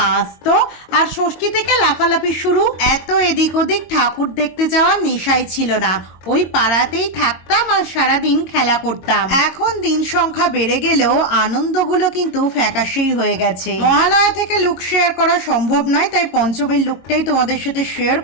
আসতো, আর ষষ্ঠী থেকে লাফালাফি শুরু। এত এদিক ওদিক ঠাকুর দেখতে যাওয়ার নেশাই ছিল না, ওই পাড়াতেই থাকতাম আর সারাদিন খেলা করতাম। এখন দিন সংখ্যা বেড়ে গেলেও আনন্দগুলো কিন্তু ফ্যাকাশেই হয়ে গেছে। মহালয়া থেকে লুক শেয়ার করা সম্ভব নয়, তাই পঞ্চমীর লুকটাই তোমাদের সাথে শেয়ার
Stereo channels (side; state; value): right; late; 22 ms